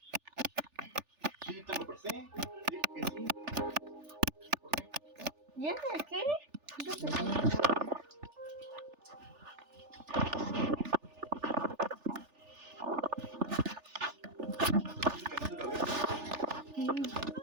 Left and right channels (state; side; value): late; left; 3.4 ms